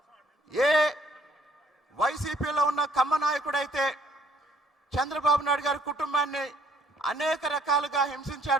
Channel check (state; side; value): normal; both; correlation 0.62